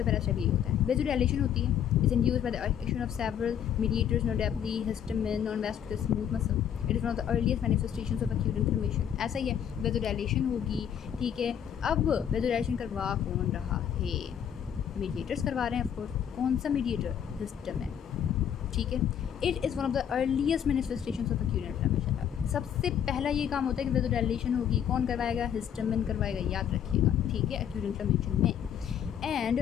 पहला स्टेप यही होता है। वेसोडाइलेशन होती है, is induced by the action of several mediators, notably histamine on vascular smooth muscle. It is one of the earliest manifestations of acute inflammation. ऐसा ही है, वेसोडाइलेशन होगी, ठीक है। अब वेसोडाइलेशन करवा कौन रहा है? मीडिएटर्स करवा रहे हैं ऑफकोर्स। कौन सा मीडिएटर? हिस्टामिन, ठीक है। It is one of the earliest manifestations of acute inflammation. सबसे पहला ये काम होता है कि वेसोडाइलेशन होगी, कौन करवाएगा? हिस्टामिन करवाएगा, याद रखिएगा, ठीक है, एक्यूट इन्फ्लेमेशन में। And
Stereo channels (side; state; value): right; quieter; 9.1 dB